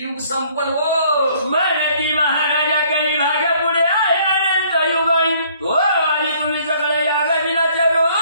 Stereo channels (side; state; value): both; inverted; correlation -0.60